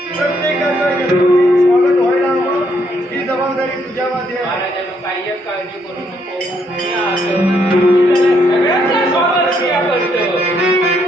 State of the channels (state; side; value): normal; both; correlation 0.73